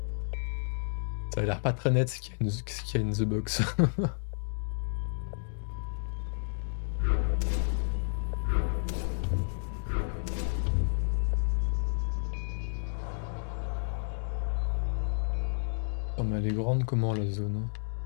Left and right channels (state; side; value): silent; right; digital silence